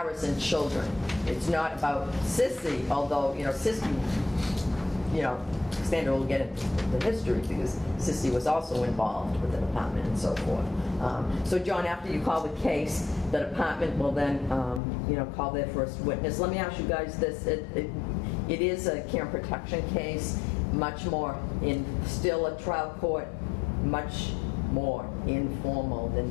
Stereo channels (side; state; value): right; drops out; at 14.8 s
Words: children. It's not about Sissy, although, Sissy, Cassandra will get into the history because Sissy was also involved with the department and so forth. So John, after you call the case, the department will then, call their first witness. Let me ask you guys this. It is a camp protection case, much more still a trial court, much more informal